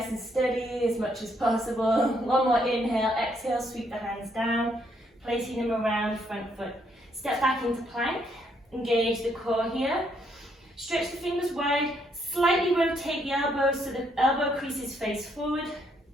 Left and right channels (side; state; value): both; normal; correlation 0.72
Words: and steady as much as possible. One more inhale, exhale, sweep the hands down, placing them around front foot. Step back into plank, engage the core here. Stretch the fingers wide, slightly rotate the elbows so the elbow creases face forward.